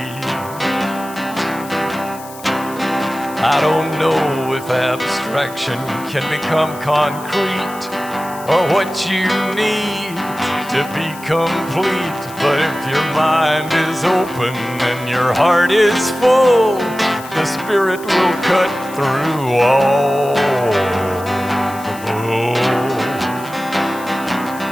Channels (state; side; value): noise; left; hiss, 18 dB below the sound